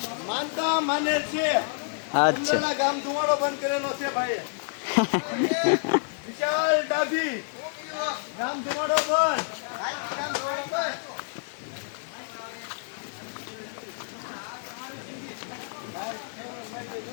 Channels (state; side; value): silent; right; 59 dB below the other